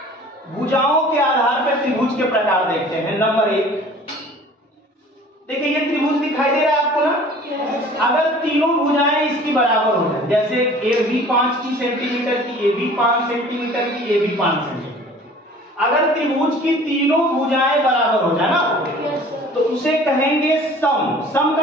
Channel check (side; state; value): both; normal; correlation 0.47